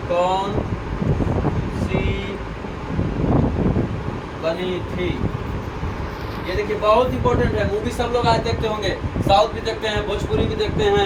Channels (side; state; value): both; identical; correlation 1.00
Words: कौन सी बनी थी? ये देखिए, बहुत इंपॉर्टेंट है। मूवी सब लोग आज देखते होंगे, साउथ भी देखते हैं, भोजपुरी भी देखते